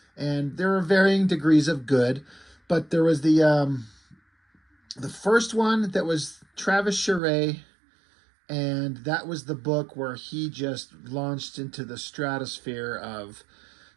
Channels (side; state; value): left; drops out; at 7.2 s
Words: and there were varying degrees of good. But there was the first one that was Travis Charest, and that was the book where he just launched into the stratosphere of